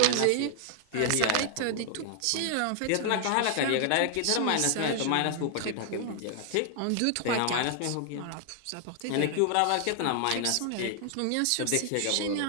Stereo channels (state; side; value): different; both; correlation 0.00